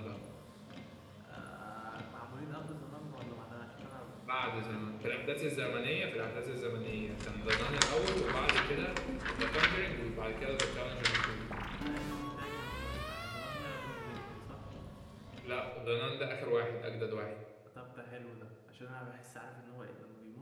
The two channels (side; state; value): both; identical; correlation 1.00